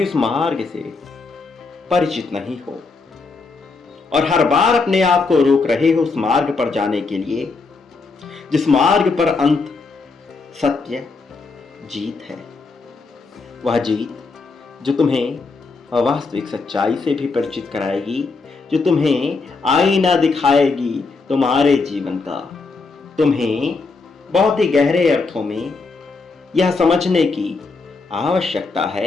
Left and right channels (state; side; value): quieter; right; 4.1 dB